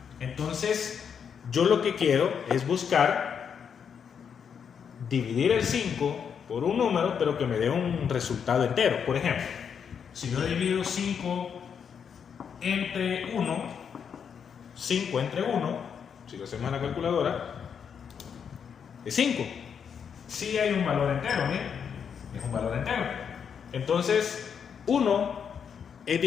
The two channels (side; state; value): right; quieter; 7.2 dB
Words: Entonces, yo lo que quiero es buscar dividir el 5 por un número, pero que me dé un resultado entero. Por ejemplo, si yo divido 5 entre 1, 5 entre 1, si lo hacemos en la calculadora, es 5. Sí hay un valor entero, ¿bien? Es un valor entero. Entonces, 1 es